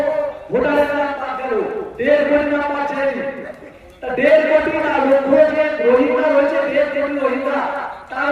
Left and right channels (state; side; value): identical; both; correlation 1.00